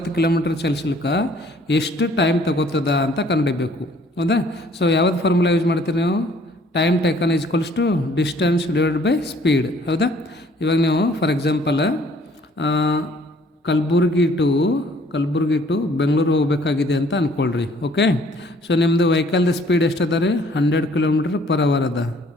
ಕಿಲೋಮೀಟ್ರ್ ಚಲಿಸಲಿಕ್ಕೆ ಎಷ್ಟು ಟೈಮ್ ತಗೋತದ ಅಂತ ಕಂಡುಹಿಡಬೇಕು ಹೌದಾ. ಸೊ ಯಾವ್ದು ಫಾರ್ಮುಲಾ ಯೂಸ್ ಮಾಡ್ತೀರಿ ನೀವು, time taken equals to distance divide by speed ಹೌದಾ. ಇವಾಗ ನೀವು for example Kalaburagi to Bengaluru ಹೋಗಬೇಕಾಗಿದೆ ಅಂತ ಅಂದ್ಕೊಳ್ರಿ. ಓಕೆ, ಸೊ ನಿಮ್ಮದು ವೆಹಿಕಲ್ದು ಸ್ಪೀಡ್ ಎಷ್ಟದ ರೀ 100 ಕಿಲೋಮೀಟ್ರ್ ಪರ್ ಅವರ್ ಅದ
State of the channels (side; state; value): both; normal; correlation 0.58